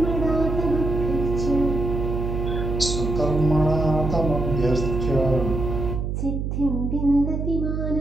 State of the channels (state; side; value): noise; right; hum, 2 dB below the sound